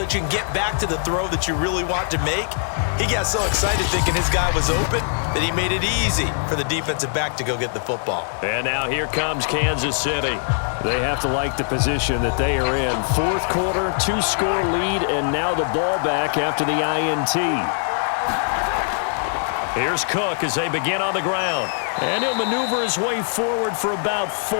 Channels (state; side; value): silent; right; digital silence